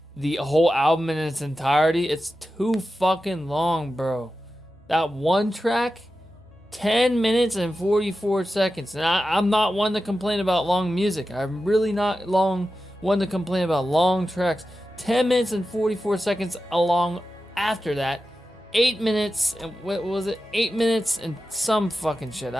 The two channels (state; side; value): normal; both; correlation 0.92